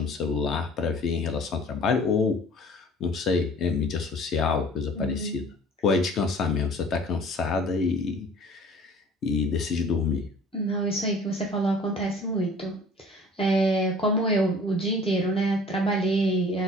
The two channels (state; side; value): normal; both; correlation 0.48